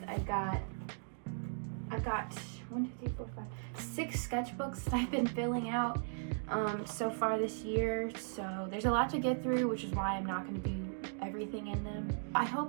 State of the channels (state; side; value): silent; left; digital silence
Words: I've got 6 sketchbooks that I've been filling out so far this year. So there's a lot to get through, which is why I'm not going to do everything in them. I